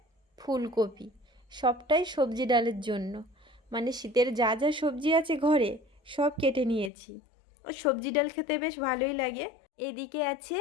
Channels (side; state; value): right; drops out; at 6.9 s